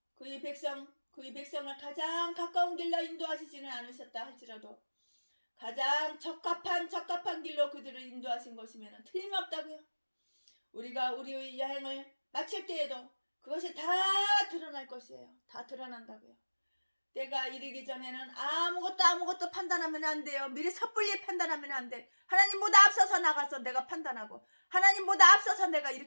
그의 백성을 가장 가까운 길로 인도하시지는 않으셨다 할지라도 가장 적합한 길로 그들을 인도하신 것이면 틀림없다고요. 우리가 우리의 여행을 마칠 때에도 그것이 다 드러날 것이에요. 다 드러난다고요. 때가 이르기 전에는 아무것도 판단하면 안 돼요. 미리 섣불리 판단하면 안 돼. 하나님보다 앞서서 나가서 내가 판단하고 하나님보다 앞서서 내가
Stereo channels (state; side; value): inverted; both; correlation -1.00